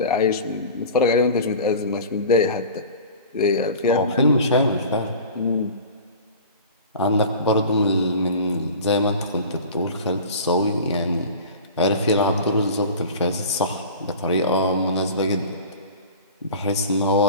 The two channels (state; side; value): inverted; both; correlation -0.37